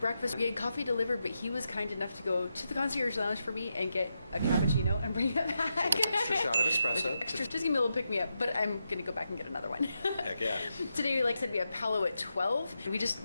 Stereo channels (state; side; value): inverted; both; correlation -0.86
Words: We had coffee delivered, but he was kind enough to go to the concierge lounge for me and get a cappuccino and bring it back. With an extra shot of espresso. Just give me a little pick me up, but I'm gonna go back and get another one. Heck yeah. Today, like I said, we have Palo at 12. We